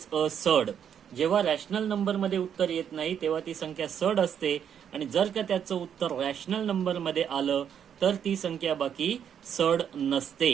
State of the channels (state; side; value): quieter; left; 8.5 dB